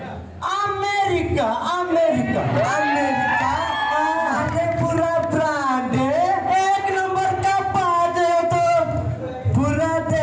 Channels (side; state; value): both; identical; correlation 1.00